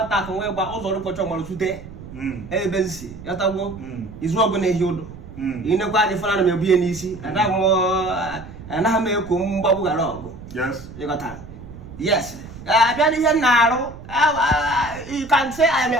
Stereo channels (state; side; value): noise; right; rumble, 15 dB below the sound